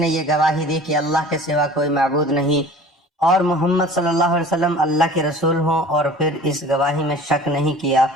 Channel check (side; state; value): both; normal; correlation 0.44